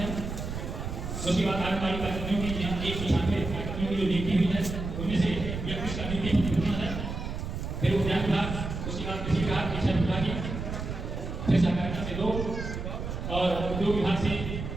है, उसके बाद आंगनबाड़ी कार्यकर्मियों की 196 कार्यकर्मियों की जो नियुक्ति हुई है उनमें से 31 का नियुक्ति वितरण है, फिर उद्यान विभाग, उसके बाद कृषि विभाग, शिक्षा विभाग, फिर सहकारिता से 2 और उद्योग विभाग से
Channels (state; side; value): noise; right; rumble, 6 dB below the sound